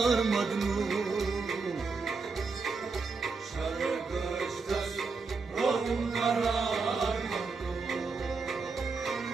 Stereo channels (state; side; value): quieter; left; 4.5 dB